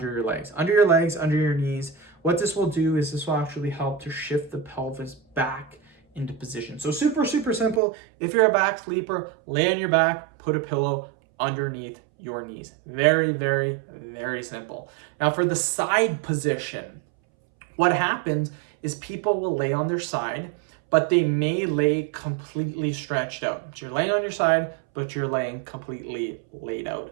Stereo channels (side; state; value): left; drops out; at 7.8 s